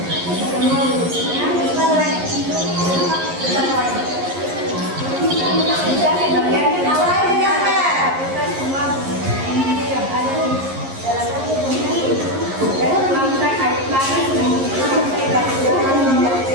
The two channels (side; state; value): left; late; 11 ms